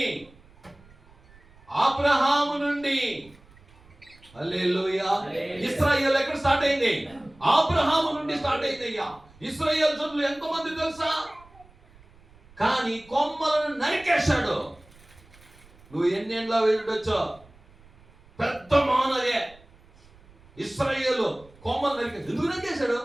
హల్లెలూయా. ఇశ్రాయేలు ఎక్కడ స్టార్ట్ అయింది? అబ్రహాము నుండి స్టార్ట్ అయింది. అయ్యా, ఇశ్రాయేలు జనులు ఎంతమంది తెలుసా? కానీ కొమ్మలను నరికేశాడు. నువ్వు ఎన్నేళ్ళ వెళ్ళొచ్చో పెద్ద మానవే. ఇశ్రాయేలు కొమ్మలు నరికేశాడు. ఎందుకు నరికేశాడు?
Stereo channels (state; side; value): noise; right; rumble, 26 dB below the sound